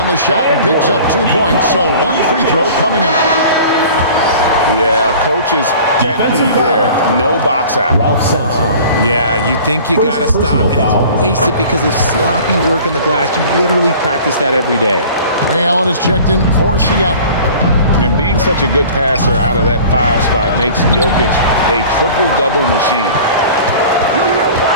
the shot and picks up 2 points. So 1 free throw coming up. Yeah, coach's pet peeve there. No box out. Yeah, you think you got to stop, and it's wasted because of sloppy work on the glass. You literally practice that every day. Ray Allen is checked in for Seattle. And being such a good passer out of that 5 spot makes Jokic a triple-double machine.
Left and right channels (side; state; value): both; inverted; correlation -0.44